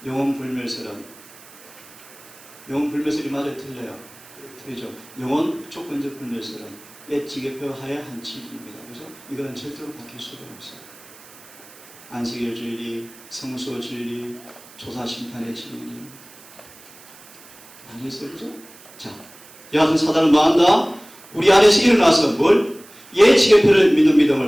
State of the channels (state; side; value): noise; right; hiss, 22 dB below the sound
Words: 영혼 불멸설은 영혼 불멸설이 맞아요? 틀려요? 틀리죠. 영혼 조건적 불멸설은 옛 지계표 하에 한 진리입니다. 그래서 이거는 절대로 바뀔 수가 없어요. 안식일 진리, 성소 진리, 조사 심판의 진리 많이 있어요. 그죠? 자, 여하튼 사단은 뭐한다? 우리 안에서 일어나서 뭘? 옛 지계표를 믿는